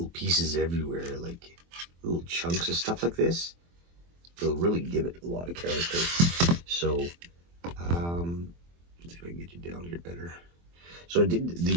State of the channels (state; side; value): late; left; 23 ms